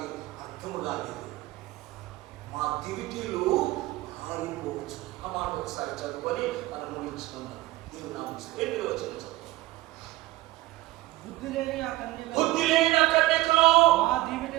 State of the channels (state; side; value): quieter; left; 18.3 dB